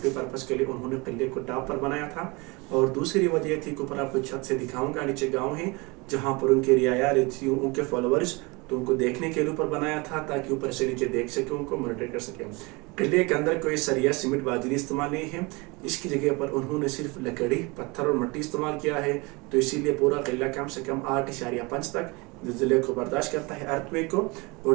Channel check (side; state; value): left; quieter; 26.5 dB